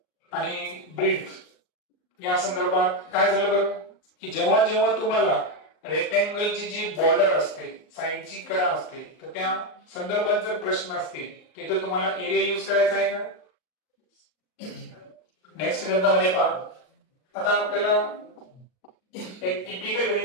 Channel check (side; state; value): right; late; 38 ms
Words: आणि ब्रीथ या संदर्भात. काय झालं बरं की जेव्हा जेव्हा तुम्हाला रेक्टँगलची जी बॉर्डर असते साईडची कडा असते तर त्या संदर्भात जर प्रश्न असतील तिथे तुम्हाला एरिया यूज करायचा आहे का. नेक्स्ट गणितामध्ये पहा. आता आपल्याला एक टिपिकल